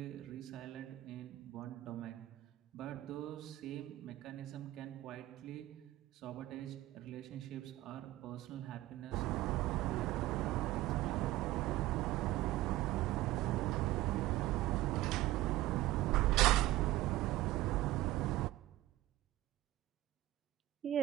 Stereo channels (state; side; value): quieter; left; 16.4 dB